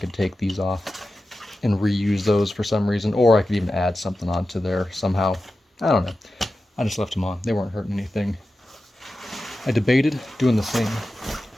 take these off and reuse those for some reason, or I could even add something onto there somehow. I don't know. I just left them on. They weren't hurting anything. I debated doing the same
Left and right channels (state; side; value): normal; both; correlation 0.93